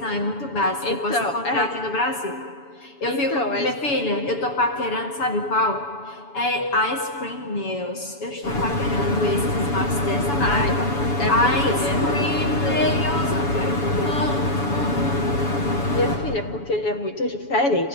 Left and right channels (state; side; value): late; right; 7.0 ms